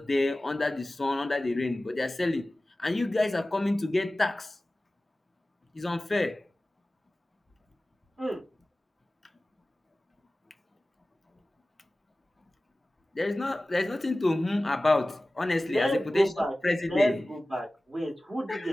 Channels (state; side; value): normal; both; correlation 0.97